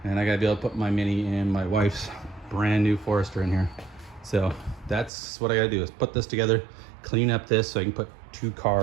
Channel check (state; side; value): drops out; left; at 5.1 s